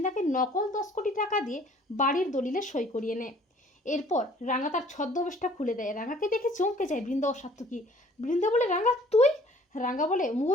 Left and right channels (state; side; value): normal; both; correlation 0.55